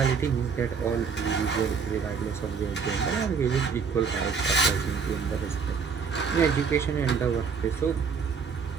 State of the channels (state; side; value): quieter; left; 5.8 dB